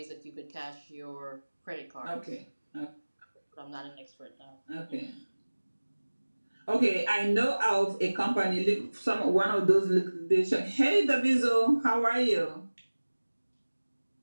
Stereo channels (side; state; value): both; inverted; correlation -1.00